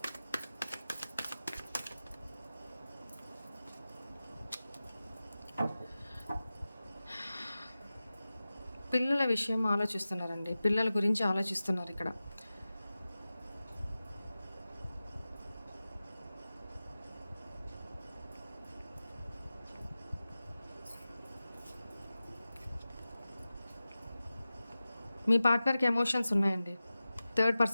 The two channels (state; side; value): inverted; both; correlation -0.95